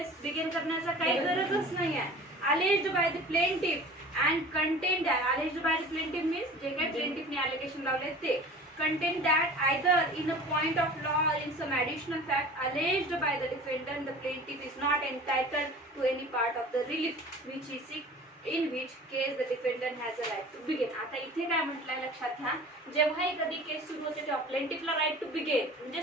बिगिन करण्याचा काही गरजच नाही आहे. Alleged by the plaintiff and content. Alleged by the plaintiff means जे काही प्लेंटिफने अलिगेशन लावले ते. Content that either in a point of law or in some additional fact alleged by the defendant, the plaintiff is not entitled to any part of the relief which he seeks, in which case the defendant has a right to begin. आता इथे काय म्हटलंय लक्षात घ्या. जेव्हाही कधी केस सुरू होते तेव्हा प्लेंटिफला राईट टू बिगिन म्हणजे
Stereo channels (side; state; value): both; normal; correlation 0.41